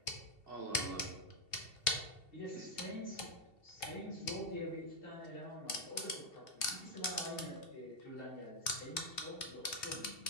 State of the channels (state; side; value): late; right; 2.7 ms